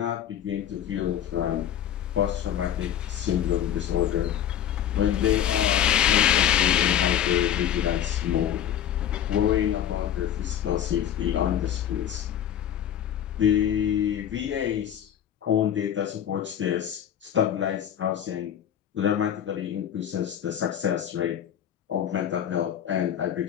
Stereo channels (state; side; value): quieter; right; 10.3 dB